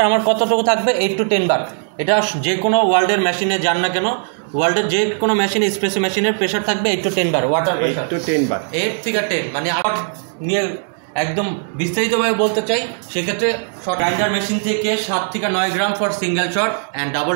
আমার কতটুকু থাকবে, 8 to 10 বার। এটা যে কোনো ওয়ার্ল্ডের মেশিনে যান না কেন, ওয়ার্ল্ডের যে কোনো মেশিনে, এসপ্রেসো মেশিনের প্রেশার থাকবে 8 to 10 বার ওয়াটার প্রেশার। 8 থেকে 10 মানে আবার নিয়ে একদম বিস্তারিতভাবে বলতে চাই, সেক্ষেত্রে গ্রাইন্ডার মেশিন থেকে 7 থেকে 9 gram for single shot, and double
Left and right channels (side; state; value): left; silent; 67 dB below the other